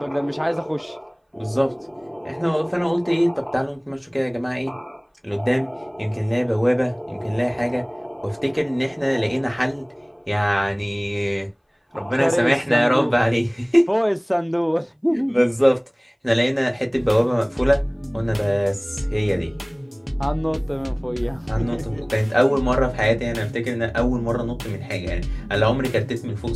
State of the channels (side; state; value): both; identical; correlation 1.00